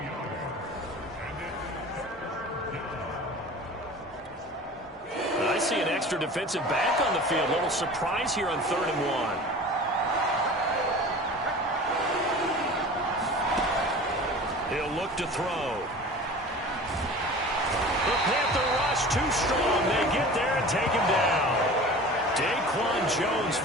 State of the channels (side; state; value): both; normal; correlation 0.39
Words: I see an extra defensive back on the field. A little surprise here on 3rd and 1. He'll look to throw. The Panther rush too strong. They get there and take him down. Daquan Jones